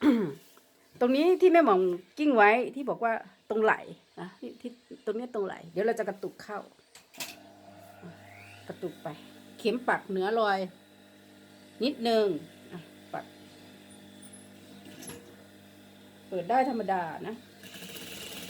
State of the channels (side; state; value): both; identical; correlation 1.00